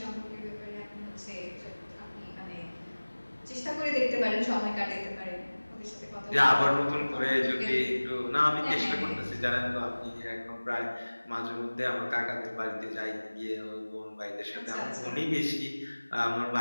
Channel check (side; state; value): both; inverted; correlation -1.00